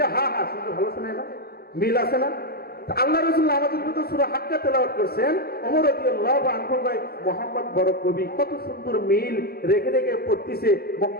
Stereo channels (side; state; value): right; late; 0.45 ms